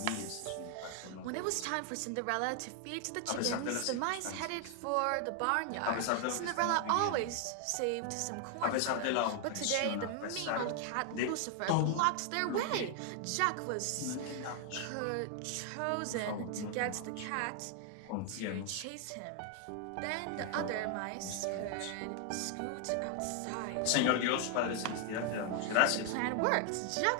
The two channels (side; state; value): both; different; correlation 0.00